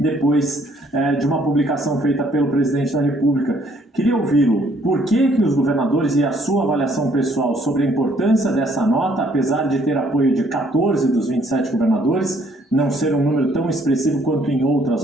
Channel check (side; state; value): both; normal; correlation 0.64